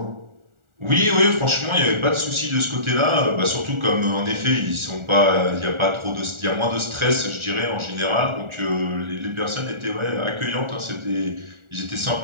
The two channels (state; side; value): late; left; 1.4 ms